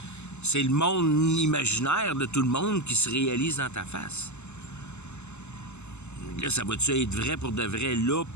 C'est le monde imaginaire de tout le monde qui se réalise dans ta face. Là, ça va-tu être vrai pour de vrai, là,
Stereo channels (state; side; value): late; right; 0.82 ms